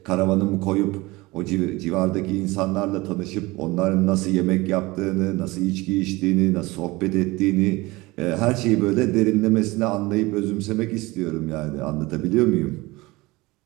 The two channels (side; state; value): left; quieter; 21.7 dB